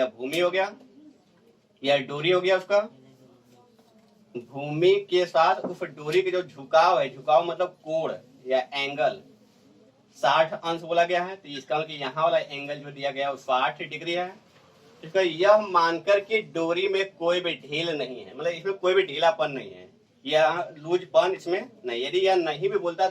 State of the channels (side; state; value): both; identical; correlation 1.00